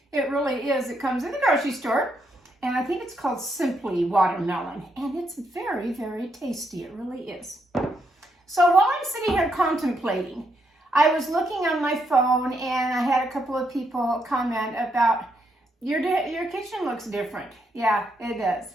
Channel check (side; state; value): both; normal; correlation 0.77